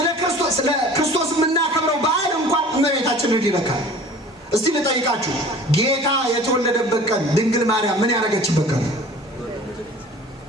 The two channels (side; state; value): both; normal; correlation 0.45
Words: ክርስቶስ የምናከብረው በዓል እንኳን እመቤታችንን ይነካል። እስቲ ልጠይቃችሁ፣ ጌታ የተወለደበት ቀን ድንግል ማርያም ምን ያደረገችበት ቀን?